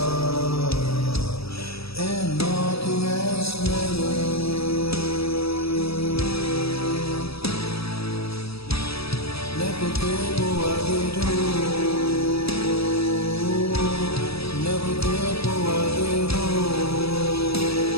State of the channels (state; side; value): late; right; 0.77 ms